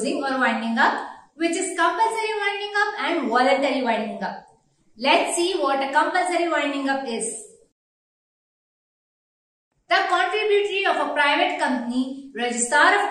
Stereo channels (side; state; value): both; identical; correlation 1.00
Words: or winding up, which is compulsory winding up and voluntary winding up. Let's see what a compulsory winding up is. The contributory of a private company, registrar